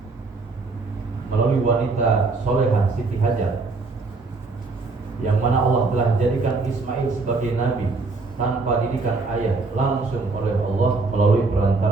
melalui wanita solehah Siti Hajar, yang mana Allah telah jadikan Ismail sebagai nabi tanpa didikan ayah, langsung oleh Allah melalui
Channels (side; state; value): left; quieter; 3.8 dB